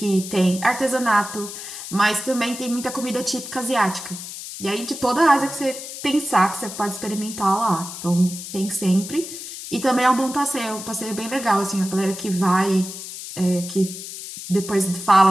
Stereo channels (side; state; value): left; noise; hiss, 10 dB below the sound